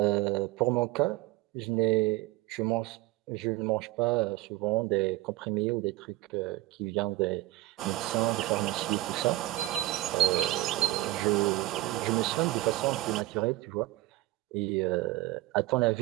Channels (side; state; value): left; quieter; 17.5 dB